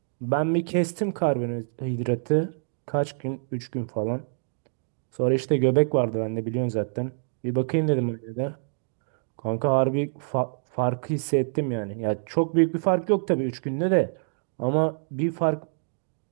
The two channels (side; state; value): left; silent; digital silence